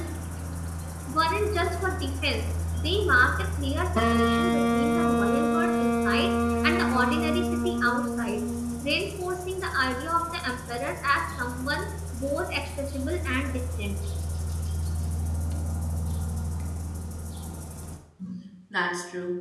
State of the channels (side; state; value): both; identical; correlation 1.00